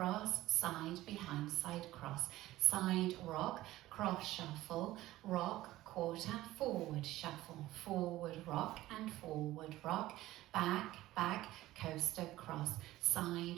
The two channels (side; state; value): left; quieter; 16.2 dB